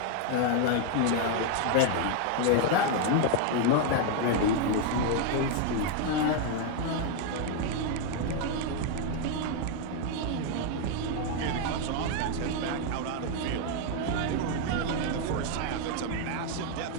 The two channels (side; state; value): both; different; correlation 0.00